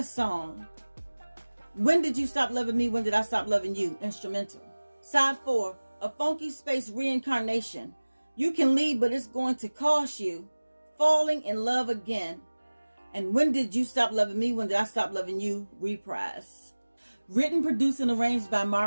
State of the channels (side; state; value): both; inverted; correlation -1.00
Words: Song. When Did You Stop Loving Me? When Did I Stop Loving You? Instrumental. Side 4. A Funky Space Reincarnation. You Can Leave, but It's Going to Cost You. Falling in Love Again. And When Did You Stop Loving Me? When Did I Stop Loving You? Reprise. Written, produced, and arranged by